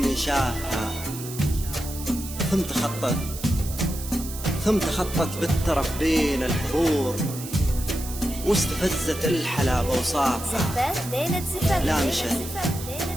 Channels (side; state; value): right; noise; hiss, 11 dB below the sound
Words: شافها، ثم تخطت بالترف بين الحضور، واستفزت الحلا بوصافها.